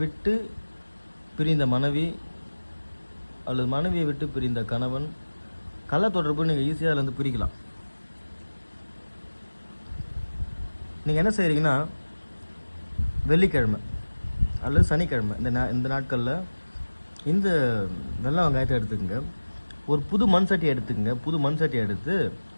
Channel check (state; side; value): inverted; both; correlation -1.00